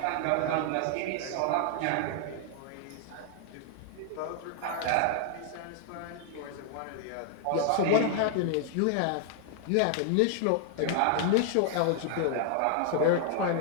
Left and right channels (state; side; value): different; both; correlation 0.00